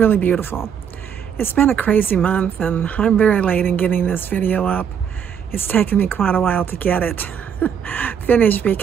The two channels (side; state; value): left; quieter; 7.9 dB